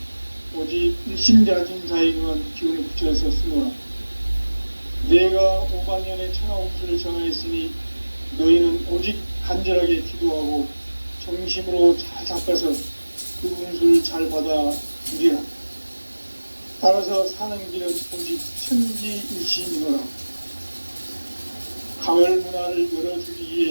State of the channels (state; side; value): inverted; both; correlation -1.00